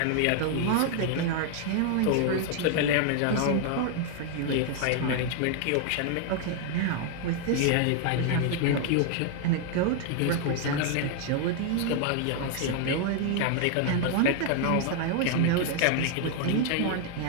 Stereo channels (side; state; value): both; different; correlation 0.00